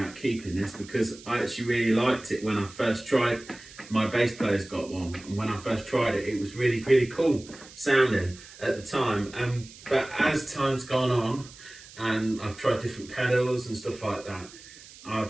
keeping this because I actually really liked it when I first tried. My bass player's got one, and when I first tried it, it was really, really cool sounding at the time. But as time's gone on, and I've tried different pedals and stuff like that,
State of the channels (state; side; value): noise; right; hiss, 19 dB below the sound